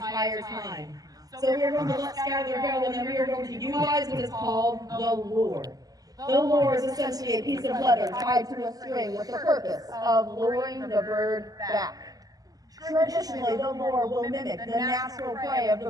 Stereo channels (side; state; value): left; late; 0.18 ms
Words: time. So we are going to let Skylar go, and then we are going to utilize what is called the lure. The lure is essentially a piece of leather tied to a string with the purpose of luring the bird back. Traditionally, the lure will mimic the natural prey of the